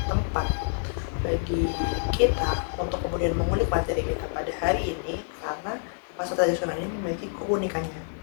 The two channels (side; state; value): right; silent; 60 dB below the other